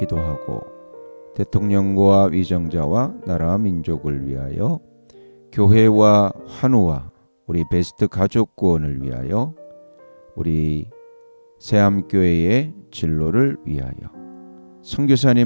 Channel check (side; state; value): both; inverted; correlation -1.00